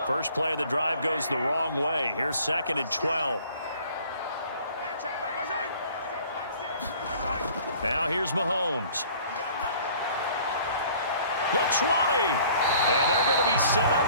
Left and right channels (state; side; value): inverted; both; correlation -0.52